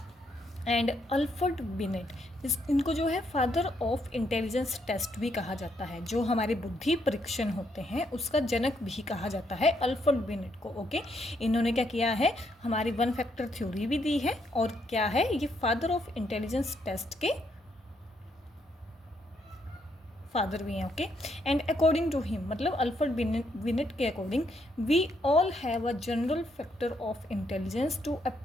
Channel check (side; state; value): both; normal; correlation 0.75